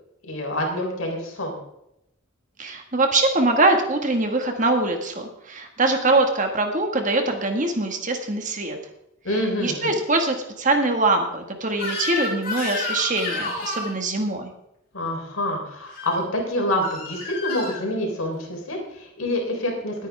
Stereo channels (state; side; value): normal; both; correlation 0.03